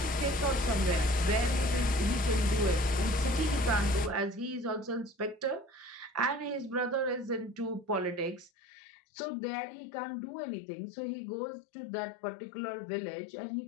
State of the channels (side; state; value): right; drops out; at 8.5 s